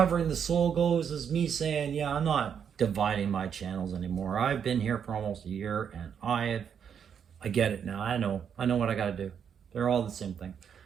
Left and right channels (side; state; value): left; quieter; 7.7 dB